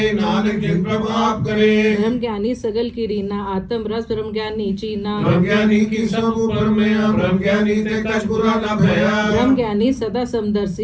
नानक जिन प्रभाव करे ब्रह्म ज्ञानी सगल की रीना आत्म रस ब्रह्म ज्ञानी चीना ब्रह्म ज्ञानी की सब ऊपर में ब्रह्म ज्ञानी ते कछ बुरा न भया ब्रह्म ज्ञानी सदा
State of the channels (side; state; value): both; identical; correlation 1.00